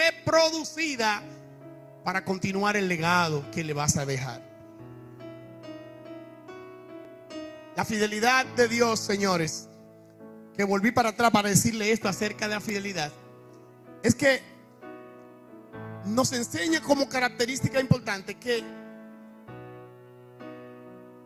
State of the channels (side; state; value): both; identical; correlation 1.00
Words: para continuar el legado que le vas a dejar. La fidelidad de Dios, señores, que volví para atrás para decirle esto acerca de la fidelidad, es que nos enseña como característica importante que